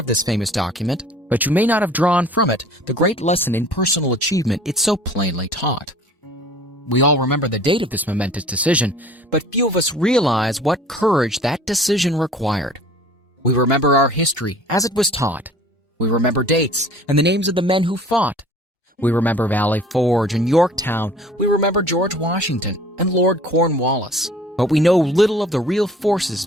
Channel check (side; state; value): both; normal; correlation 0.49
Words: this famous document, but you may not have drawn from it the great lesson in personal achievement it so plainly taught. We all remember the date of this momentous decision, but few of us realize what courage that decision required. We remember our history as it was taught. We remember dates and the names of the men who fought. We remember Valley Forge and Yorktown. We remember George Washington and Lord Cornwallis. But we know little of the real forces